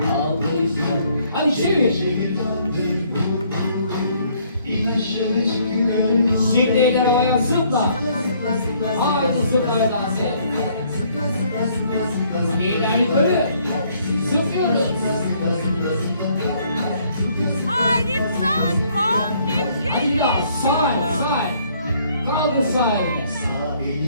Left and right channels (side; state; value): both; inverted; correlation -0.64